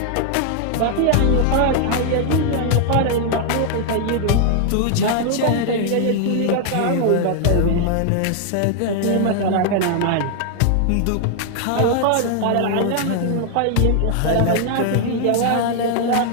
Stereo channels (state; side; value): different; both; correlation 0.00